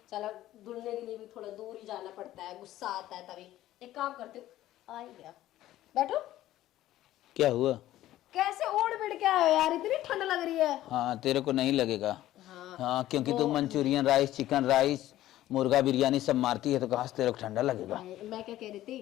चला धुलने के लिए भी थोड़ा दूर ही जाना पड़ता है, गुस्सा आता है तभी। एक काम करते हो, आ ही गया, बैठो। क्या हुआ? कैसे ओढ़ बिड़ के आए हो यार, इतनी ठंड लग रही है। हाँ तेरे को नहीं लगेगा। हाँ क्योंकि तू मंचूरियन राइस, चिकन राइस, मुर्गा बिरयानी सब मारती है, तो कहाँ से तेरे को ठंडा लगेगा। मैं क्या कह रही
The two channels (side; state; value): right; quieter; 14.3 dB